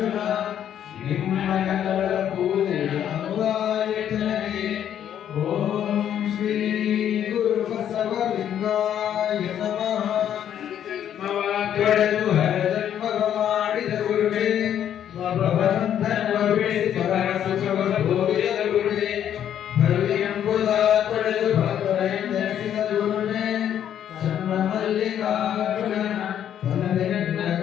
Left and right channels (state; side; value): quieter; right; 9.9 dB